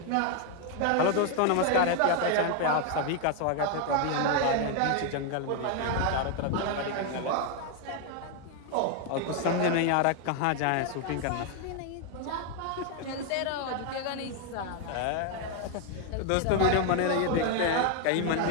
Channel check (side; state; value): both; different; correlation 0.01